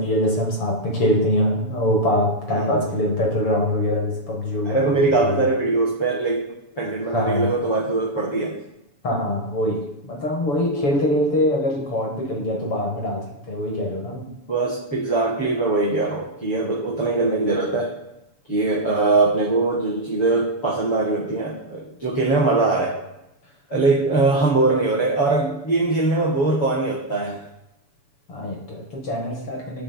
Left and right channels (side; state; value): right; late; 7.0 ms